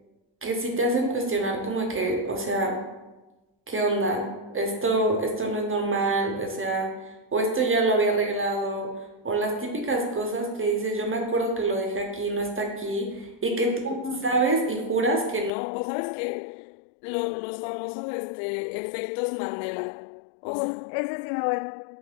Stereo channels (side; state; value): right; drops out; at 15.5 s